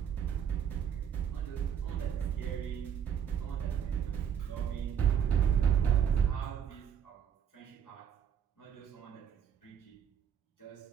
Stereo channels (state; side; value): quieter; left; 8.4 dB